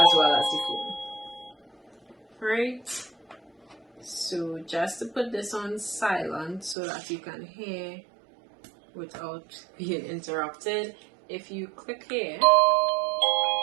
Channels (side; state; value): left; drops out; at 6.8 s